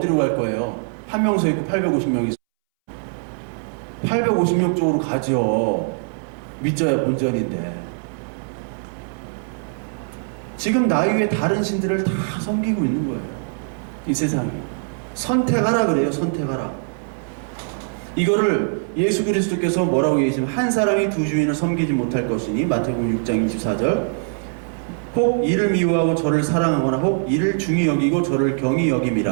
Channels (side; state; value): left; silent; 64 dB below the other